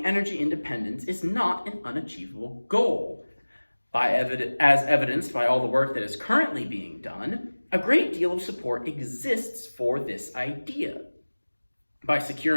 energy independence is not an unachievable goal. As evidenced by all the work that is currently being done, a great deal of support exists for this idea. By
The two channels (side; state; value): both; inverted; correlation -1.00